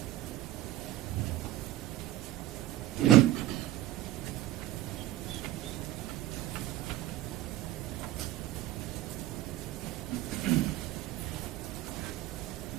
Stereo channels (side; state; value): left; quieter; 14.5 dB